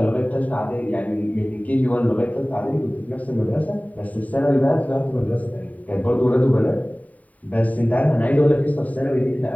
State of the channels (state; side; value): late; right; 0.071 ms